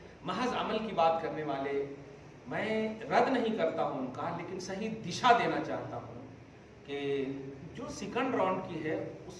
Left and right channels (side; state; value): both; identical; correlation 1.00